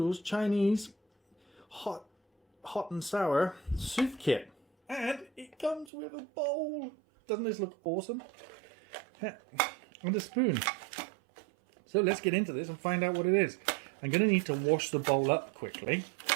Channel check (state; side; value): drops out; left; at 5.9 s